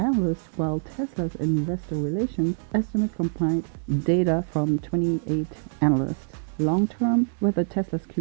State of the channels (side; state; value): left; silent; 62 dB below the other